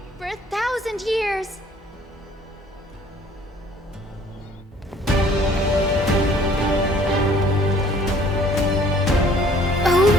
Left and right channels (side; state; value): both; normal; correlation 0.56